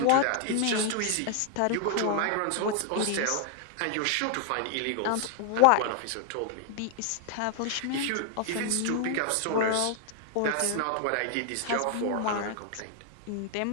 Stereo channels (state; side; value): different; both; correlation 0.00